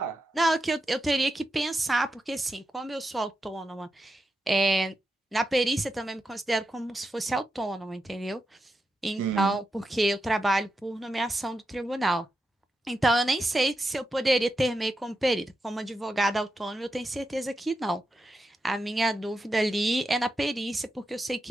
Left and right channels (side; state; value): both; normal; correlation 0.87